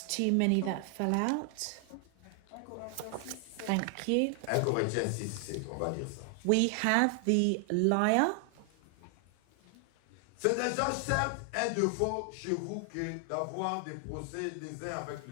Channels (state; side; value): different; both; correlation 0.00